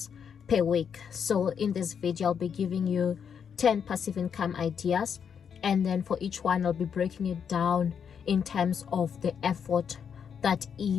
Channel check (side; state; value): right; quieter; 7.3 dB